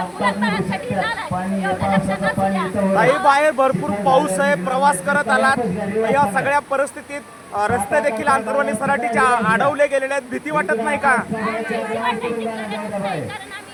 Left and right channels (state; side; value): identical; both; correlation 1.00